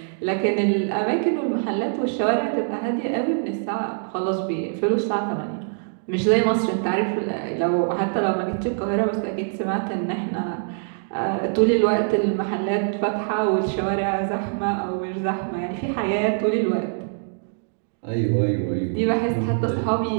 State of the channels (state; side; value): silent; left; digital silence